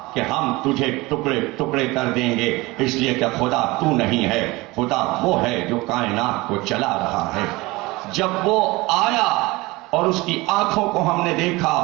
کہ ہم تجھے ٹکڑے ٹکڑے کر دیں گے، اس لیے کہ خدا تو نہیں ہے، خدا وہ ہے جو کائنات کو چلا رہا ہے۔ جب وہ آیا اور اس کی آنکھوں کو ہم نے دیکھا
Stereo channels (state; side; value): quieter; left; 22.0 dB